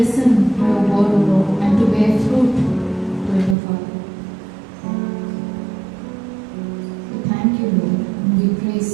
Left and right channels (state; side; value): drops out; left; at 3.6 s